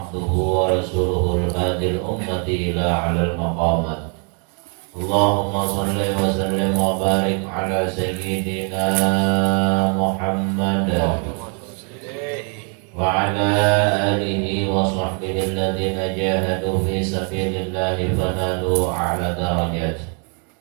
wa rasuluhul hadil ummati ila 'alal maqamat. Allahumma shalli wa sallim wa barik ala sayyidina Muhammad wa ala alihi wa sahbihi alladhina jahadu fi sabilillahi fanalu a'la darajat.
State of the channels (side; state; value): left; quieter; 39.3 dB